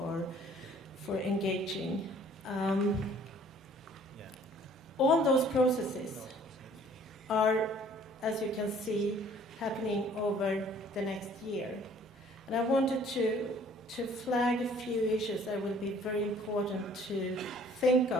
engaging. All those processes are, as you can see, happening over the next year. And I wanted to flag a few issues that will be very important to think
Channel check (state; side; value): normal; both; correlation 0.56